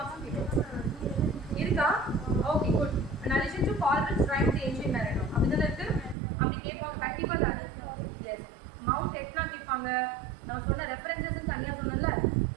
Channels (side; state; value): left; drops out; at 6.2 s